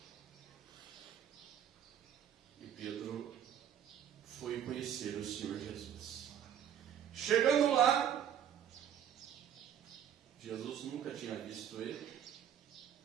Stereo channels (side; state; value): left; quieter; 9.5 dB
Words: E Pedro foi conhecer o Senhor Jesus. Chegando lá, Jesus nunca tinha visto ele.